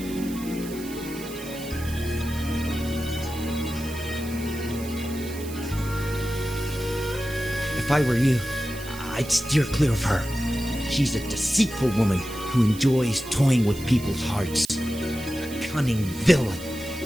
If I were you, I'd steer clear of her. She's a deceitful woman who enjoys toying with people's hearts. A cunning villain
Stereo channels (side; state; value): right; noise; hiss, 15 dB below the sound